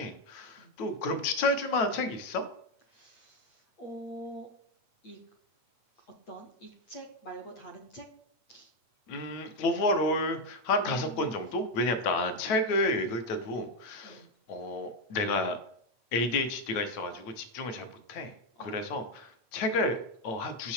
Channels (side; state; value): right; late; 9.2 ms